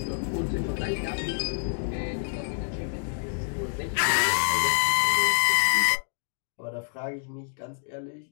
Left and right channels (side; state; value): right; silent; digital silence